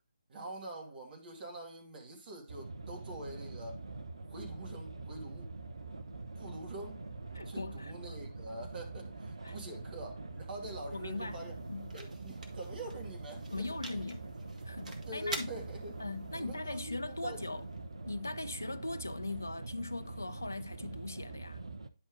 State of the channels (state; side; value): inverted; both; correlation -0.77